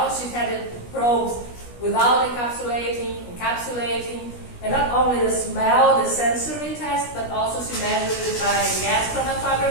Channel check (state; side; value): late; right; 17 ms